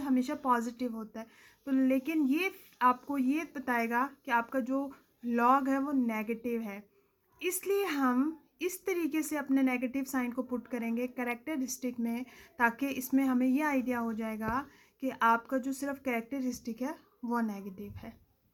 हमेशा पॉजिटिव होता है, तो लेकिन ये आपको ये बताएगा कि आपका जो लॉग है वो नेगेटिव है। इसलिए हम इस तरीके से अपने नेगेटिव साइन को पुट करेंगे करेक्टरिस्टिक में, ताकि इसमें हमें ये आइडिया हो जाएगा कि आपका जो सिर्फ करेक्टरिस्टिक है वो नेगेटिव है।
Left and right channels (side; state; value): both; identical; correlation 1.00